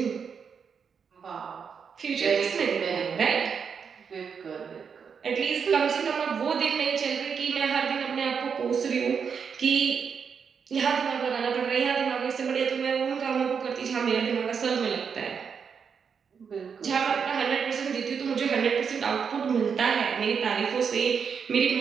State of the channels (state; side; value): quieter; left; 6.5 dB